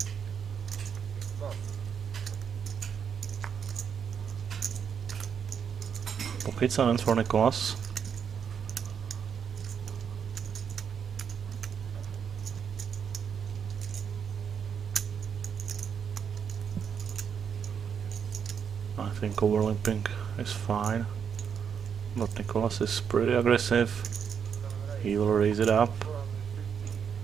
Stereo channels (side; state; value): left; quieter; 7.3 dB